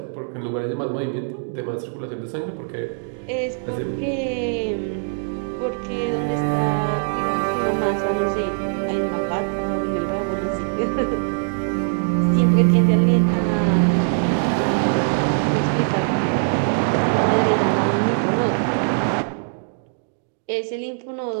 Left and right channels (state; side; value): silent; left; digital silence